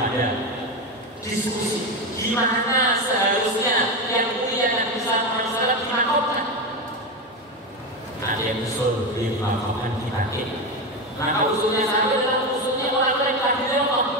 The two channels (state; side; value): normal; both; correlation 0.15